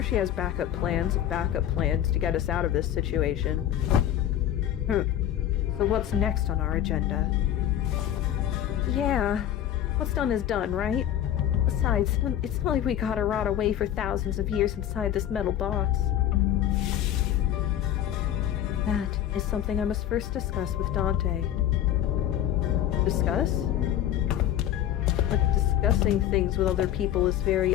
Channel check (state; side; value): quieter; right; 11.2 dB